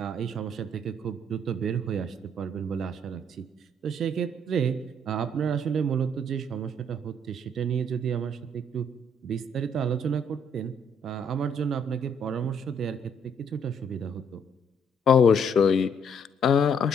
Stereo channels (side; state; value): both; normal; correlation 0.66